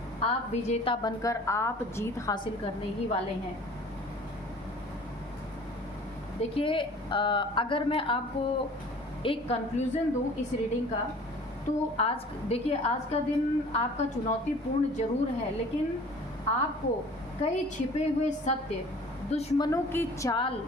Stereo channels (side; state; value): both; normal; correlation 0.47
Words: आप विजेता बनकर आप जीत हासिल करने ही वाले हैं। देखिए, अगर मैं आपको एक कंक्लूज़न दूं इस रीडिंग का, तो आज देखिए, आज का दिन आपका चुनौतीपूर्ण ज़रूर है, लेकिन आपको कई छिपे हुए सत्य, दुश्मनों की चाल,